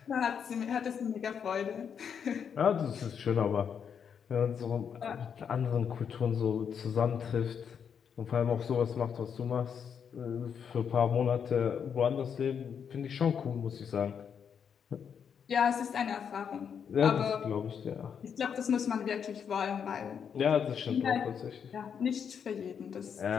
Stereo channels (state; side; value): quieter; right; 7.4 dB